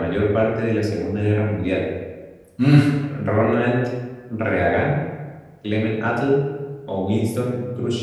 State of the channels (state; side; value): identical; both; correlation 1.00